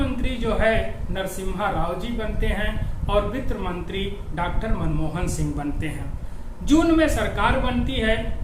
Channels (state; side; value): identical; both; correlation 1.00